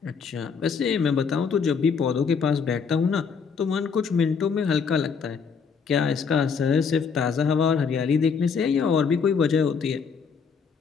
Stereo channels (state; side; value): quieter; right; 5.9 dB